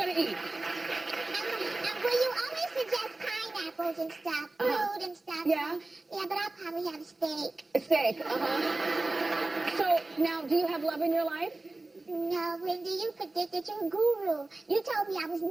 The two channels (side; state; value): left; quieter; 3.0 dB